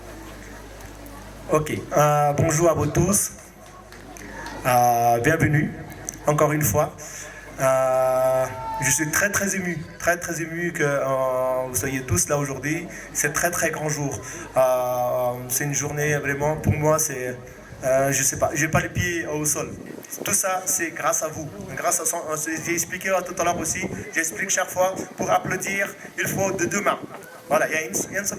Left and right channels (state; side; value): identical; both; correlation 1.00